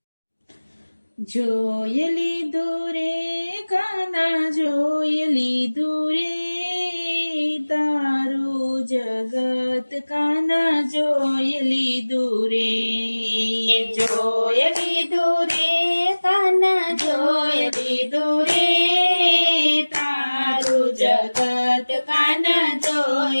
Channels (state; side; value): inverted; both; correlation -1.00